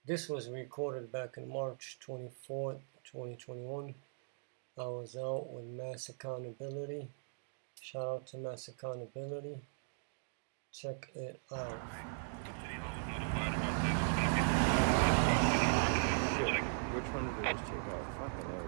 This was recorded back in March 24th, 2021. I was out with Mass Accountability. Shout out to Mass Accountability. Check it out. Shit, which one did I just check out? Fucking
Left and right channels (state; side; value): silent; left; digital silence